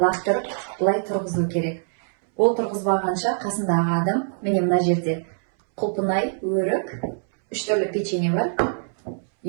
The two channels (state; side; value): silent; left; 63 dB below the other